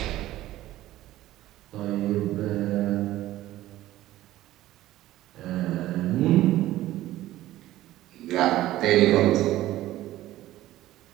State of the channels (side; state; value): left; quieter; 15.1 dB